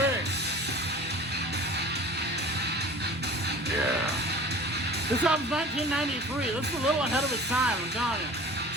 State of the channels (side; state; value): both; normal; correlation 0.42